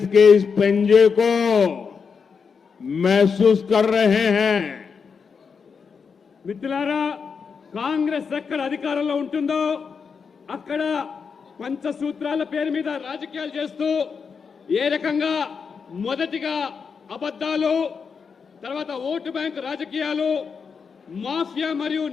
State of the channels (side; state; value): right; quieter; 5.8 dB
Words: के इस पंजे को महसूस कर रहे हैं। మిత్రులారా, కాంగ్రెస్ ఎక్కడ అధికారంలో ఉంటుందో అక్కడ పంచసూత్రాల పేరు మీద రాజకీయాలు చేస్తూ ఏ రకంగా మొదటిగా అబద్ధాలు, తర్వాత ఓటు బ్యాంక్ రాజకీయాలు, మాఫియా మరియు